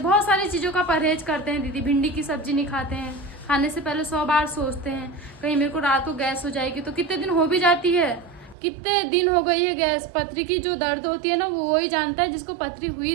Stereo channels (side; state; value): left; drops out; at 8.6 s